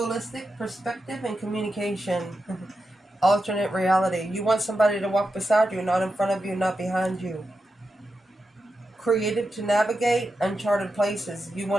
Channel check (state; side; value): normal; both; correlation 0.89